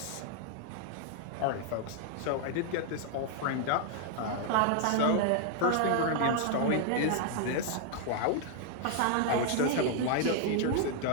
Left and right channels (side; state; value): both; different; correlation 0.00